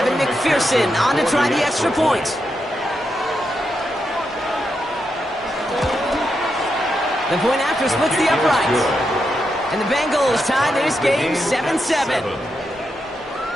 McPherson on to try the extra point. The point after splits the uprights. And the Bengals tie this game 7-7.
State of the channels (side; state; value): both; normal; correlation 0.84